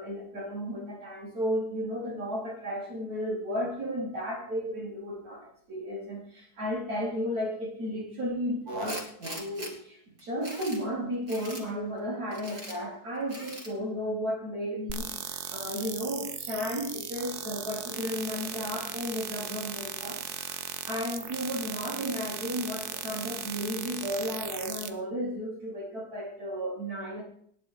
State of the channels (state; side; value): late; left; 4.6 ms